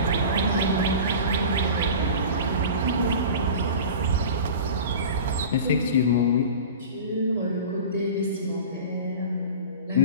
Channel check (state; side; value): inverted; both; correlation -0.35